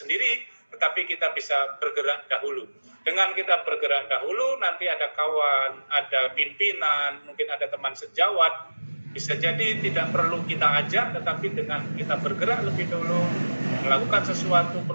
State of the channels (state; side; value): inverted; both; correlation -1.00